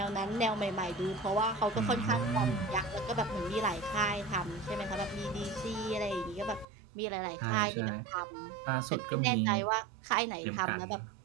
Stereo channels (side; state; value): left; drops out; at 6.7 s